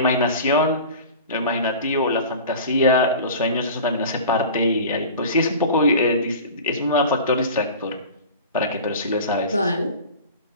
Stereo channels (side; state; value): both; inverted; correlation -0.38